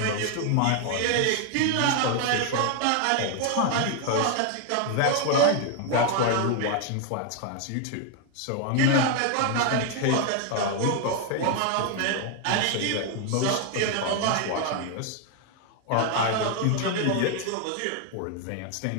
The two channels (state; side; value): different; both; correlation 0.00